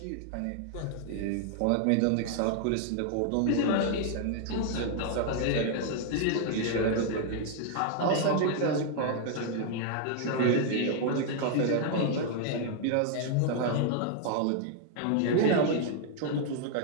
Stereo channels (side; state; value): both; different; correlation 0.00